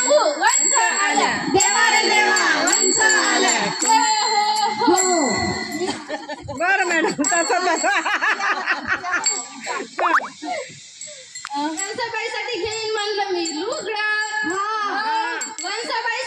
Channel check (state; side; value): identical; both; correlation 1.00